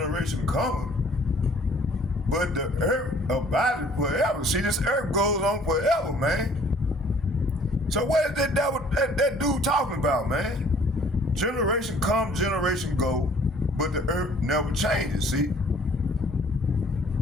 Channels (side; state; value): both; normal; correlation 0.56